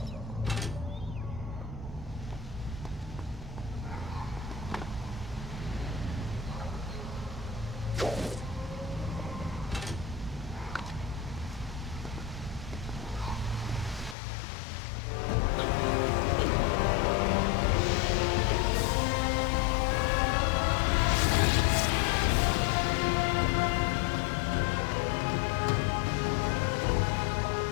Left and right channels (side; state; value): right; drops out; at 14.2 s